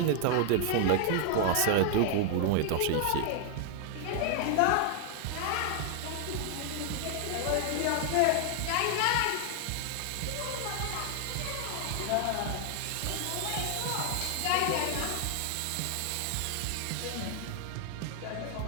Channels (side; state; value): both; different; correlation 0.00